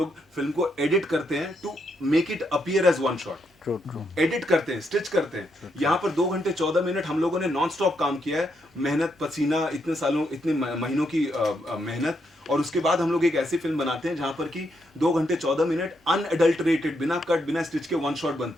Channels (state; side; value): normal; both; correlation 0.79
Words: फिल्म को एडिट करते हैं to make it appear as one shot, true true edit करते हैं, स्टिच करते हैं। यहाँ पर 2 घंटे 14 मिनट हम लोगों ने नॉन स्टॉप काम किया है, मेहनत पसीना, इतने सालों इतने महीनों की मेहनत, और उसके बाद हम लोग एक ऐसी फिल्म बनाते हैं जहाँ पर कि 2 घंटे 14 मिनट अनएडल्टरेटेड, बिना कट बिना स्टिच के वन शॉट